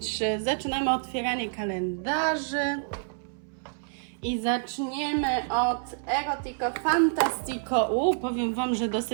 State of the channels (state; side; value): silent; left; 59 dB below the other